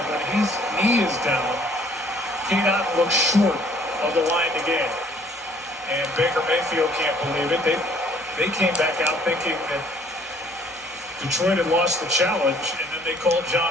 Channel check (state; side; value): normal; both; correlation 0.59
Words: when his knee is down, Cade Otton looks short of the line to gain. And Baker Mayfield can't believe it. They came back out thinking that Detroit had lost the challenge, and then they called